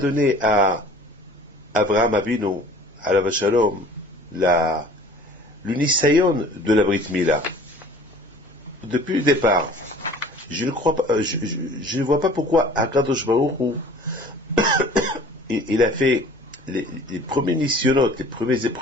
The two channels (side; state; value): both; normal; correlation 0.48